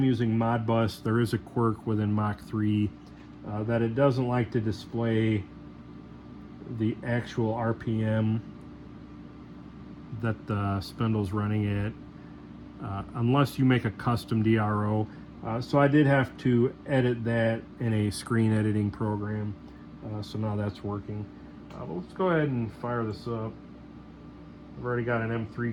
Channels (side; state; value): both; identical; correlation 1.00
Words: using Modbus, there is a quirk within Mach 3 that it doesn't like to display the actual RPM that the spindle's running at unless you make a custom DRO. So I did have to edit that in a screen editing program. So now that's working. But let's go ahead and fire this up. I've already got an